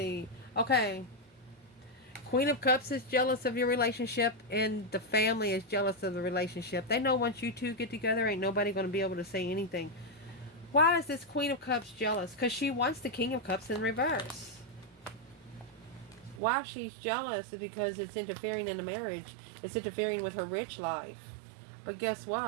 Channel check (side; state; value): left; drops out; at 16.4 s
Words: Okay. Queen of Cups is jealous of your relationship, and the family is jealous of the relationship. They know once you two get together, ain't nobody going to be able to say anything. Why is this Queen of Cups jealous? Because she wants the King of Cups in reverse. Why she's jealous is because it's interfering in the marriage. It's interfering with her rich life. But guess